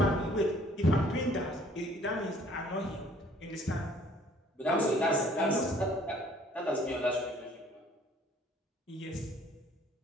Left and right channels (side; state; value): both; normal; correlation 0.57